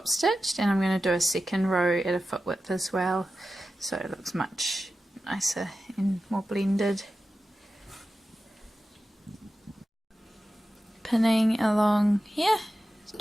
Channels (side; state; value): both; normal; correlation 0.93